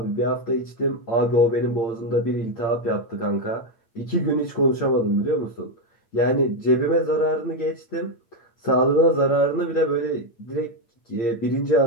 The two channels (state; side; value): late; right; 8.7 ms